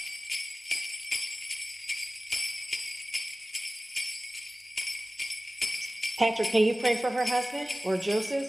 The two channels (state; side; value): normal; both; correlation 0.96